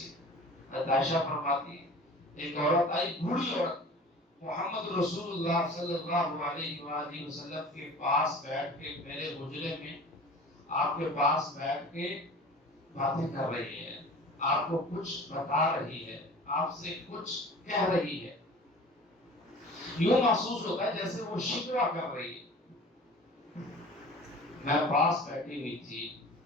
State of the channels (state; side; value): normal; both; correlation 0.42